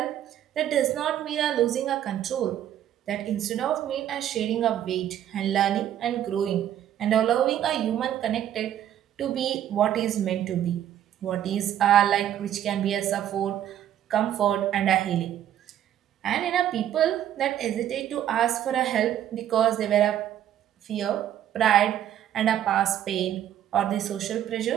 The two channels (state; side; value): quieter; left; 11.1 dB